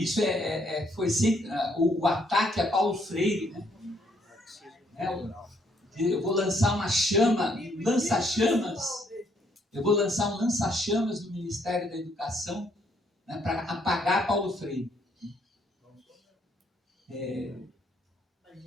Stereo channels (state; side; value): normal; both; correlation 0.69